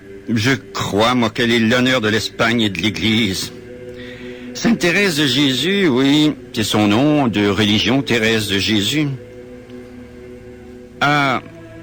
je crois, moi, qu'elle est l'honneur de l'Espagne et de l'Église. Sainte Thérèse de Jésus, oui, c'est son nom de religion, Thérèse de Jésus, a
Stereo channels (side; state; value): both; identical; correlation 1.00